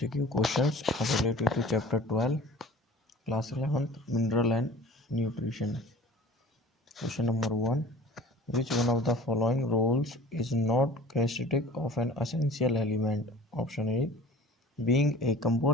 questions related to chapter 12, class 11th, mineral and nutrition. Question number 1. Which one of the following rules is not characteristic of an essential element? Option A. Being a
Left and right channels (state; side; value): normal; both; correlation 0.44